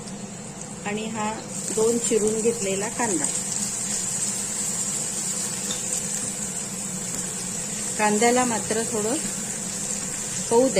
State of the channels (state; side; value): identical; both; correlation 1.00